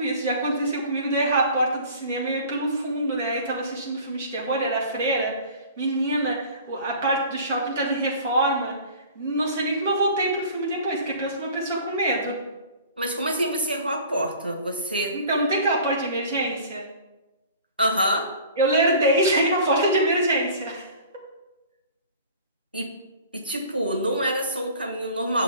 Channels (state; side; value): inverted; both; correlation -0.45